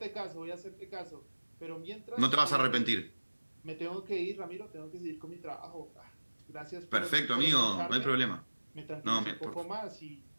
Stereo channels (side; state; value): both; inverted; correlation -1.00